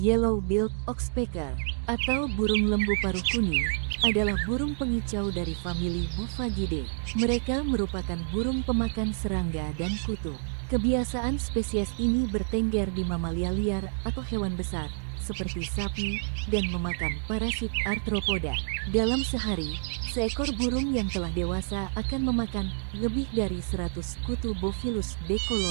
oxpecker, atau burung lembu paruh kuning, adalah burung pengicau dari famili Buffagidae. Mereka merupakan burung pemakan serangga dan kutu. Kebiasaan spesies ini bertengger di mamalia liar atau hewan besar, seperti sapi, dan memakan parasit arthropoda. Dalam sehari, seekor burung yang telah dewasa akan memakan lebih dari 100 kutu Bophilis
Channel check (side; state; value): left; silent; 59 dB below the other